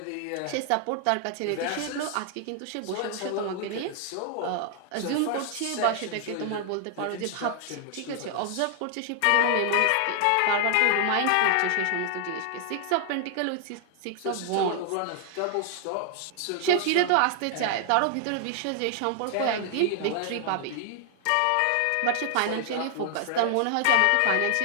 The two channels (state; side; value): different; both; correlation 0.00